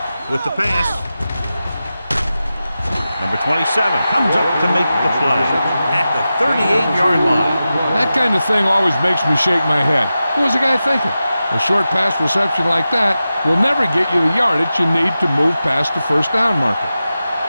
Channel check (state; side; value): inverted; both; correlation -0.93